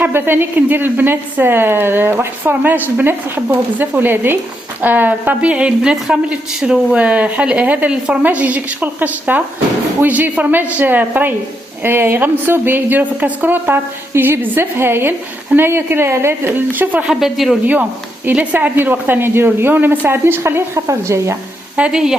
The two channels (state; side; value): normal; both; correlation 0.80